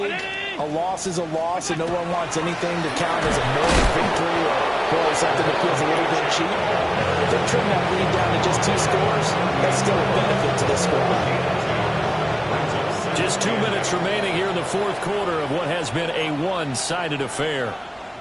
a loss is a loss, and no one wants anything to count as a moral victory or something that feels a little bit cheap. If they trim that lead down to just 2 scores, that's still a benefit to this squad. Just 2 minutes remaining here in the 4th quarter of what has been a one-sided affair.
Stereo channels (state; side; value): identical; both; correlation 1.00